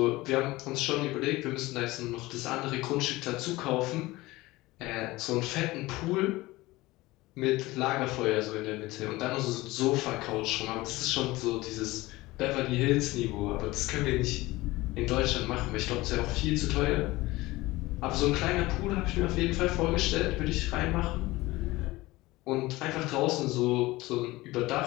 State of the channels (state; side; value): quieter; right; 19.7 dB